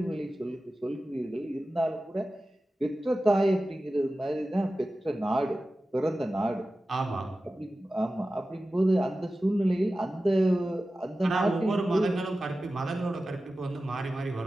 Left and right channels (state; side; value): normal; both; correlation 0.95